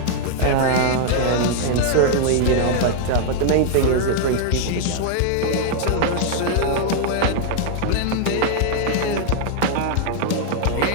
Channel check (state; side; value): different; both; correlation 0.00